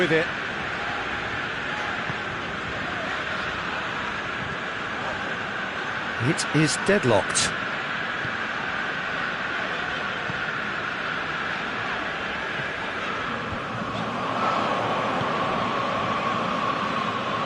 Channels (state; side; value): identical; both; correlation 1.00